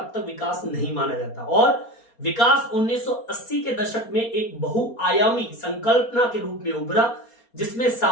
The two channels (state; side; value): late; right; 4.3 ms